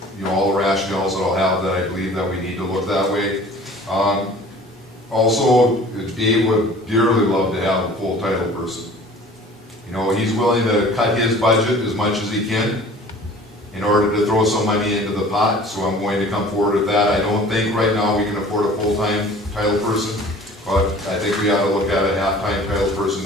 all the rationales that I'll have that I believe that we need to look that way. Also, Dave would dearly love to have a full title person. He's willing to cut his budget as much as he can in order to throw some money into the pot, so I'm going to come forward with that. I don't think right now we can afford a full-time title person, but I think we ought to look at a half-time title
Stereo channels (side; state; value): both; normal; correlation 0.47